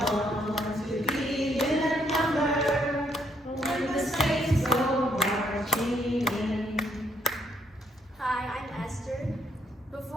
want to be in that number, when the saints go marching in. Hi, I'm Esther.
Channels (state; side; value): normal; both; correlation 0.70